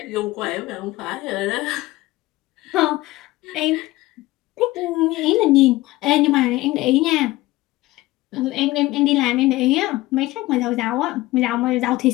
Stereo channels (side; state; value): right; quieter; 18.5 dB